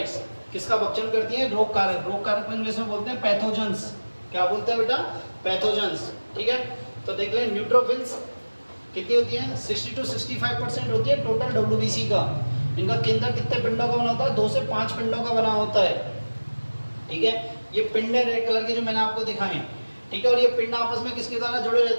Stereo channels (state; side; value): inverted; both; correlation -1.00